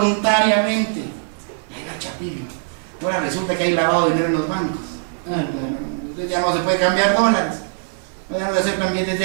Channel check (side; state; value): left; silent; 65 dB below the other